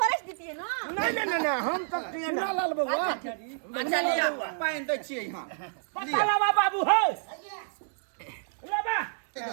देती है ना नहीं हम तो चुना लाल बबुआ अच्छा लिया पानी दे छिए यहां पता लगा बाबू है लेबा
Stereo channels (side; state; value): left; silent; 59 dB below the other